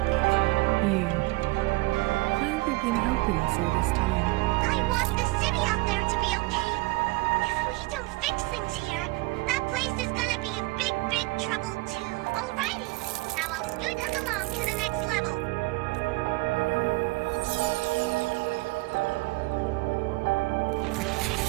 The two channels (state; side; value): quieter; left; 23.4 dB